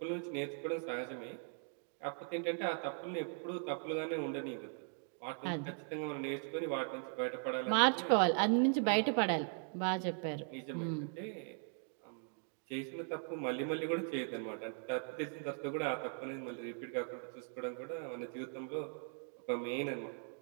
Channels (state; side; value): silent; left; 52 dB below the other